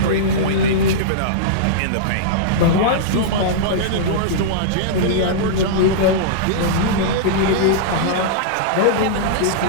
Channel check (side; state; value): both; different; correlation -0.03